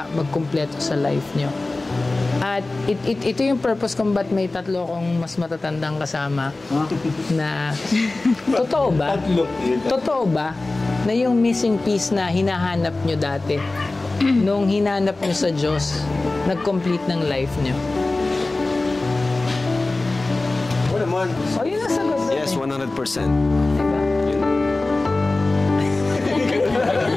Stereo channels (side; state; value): right; quieter; 3.1 dB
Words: magkumpleto sa life nyo. At ito yung purpose kung ba't may tatlo akong mas matatandang kasama na totoo ba na yung missing piece na hinahanap nyo dati nung hinanap nyo sa Diyos nag-complete ng life nyo? Oo naman. Yun ang sagot. Yes, 100%. Diba?